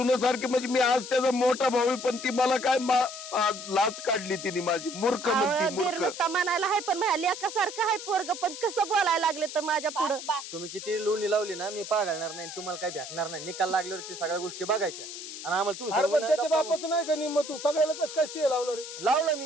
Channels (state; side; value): noise; left; hiss, 10 dB below the sound